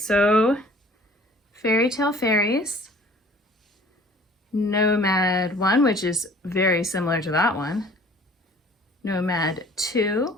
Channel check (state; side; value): normal; both; correlation 0.51